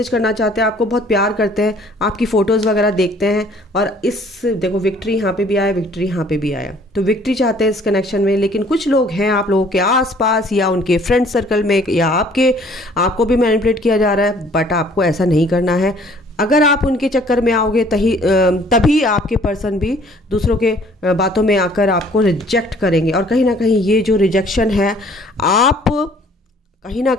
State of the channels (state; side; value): normal; both; correlation 0.57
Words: करना चाहते हैं, आपको बहुत प्यार करते हैं, आपकी फ़ोटोज़ वगैरह देखते हैं। और इस देखो विक्ट्री यहाँ पे भी आया, विक्ट्री यहाँ पे भी आया, तो विक्ट्री चाहते हैं इस कनेक्शन में। लेकिन कुछ लोग हैं आप लोगों के आसपास या उनके फ्रेंड सर्कल में या आपको भी मैनिपुलेट किया जा रहा है, बट आपको ऐसा नहीं करना है। अगर आप उनके चक्कर में आओगे तभी आपके पर्सन भी दूसरों के बातों में आकर आपको रिजेक्ट करेंगे। और कहीं ना कहीं ये जो रिजेक्शन है, आप कहीं ना